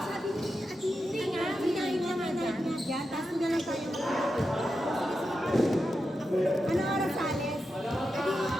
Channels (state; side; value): normal; both; correlation 0.89